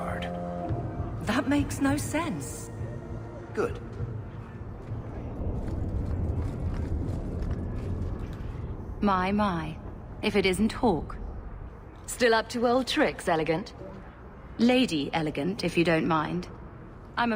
That makes no sense. Good. My. If it isn't Hawk. Still up to old tricks, Elegant? Lady Elegant, if you don't mind. I'm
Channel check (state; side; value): identical; both; correlation 1.00